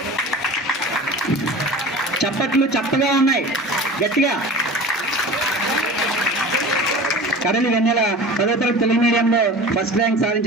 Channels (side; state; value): both; normal; correlation 0.36